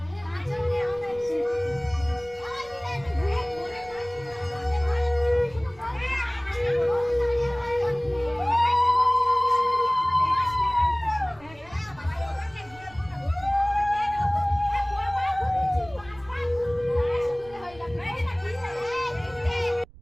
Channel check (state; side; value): noise; right; rumble, 23 dB below the sound